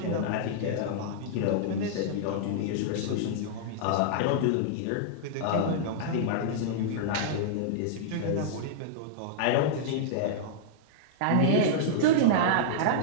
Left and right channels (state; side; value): different; both; correlation -0.02